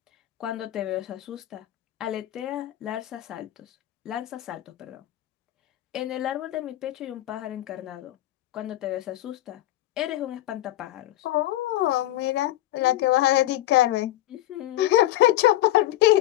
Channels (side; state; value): right; quieter; 14.7 dB